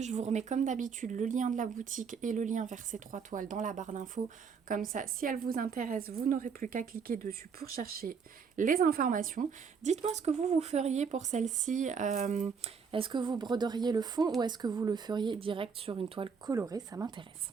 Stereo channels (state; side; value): quieter; left; 6.0 dB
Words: Je vous remets comme d'habitude le lien de la boutique et le lien vers ces 3 toiles dans la barre d'infos. Comme ça, si elles vous intéressent, vous n'aurez plus qu'à cliquer dessus pour chercher les informations. Dites-moi ce que vous feriez pour celle-ci. Est-ce que vous broderiez le fond ou est-ce que vous le feriez direct sur une toile colorée? Ça m'intéresse.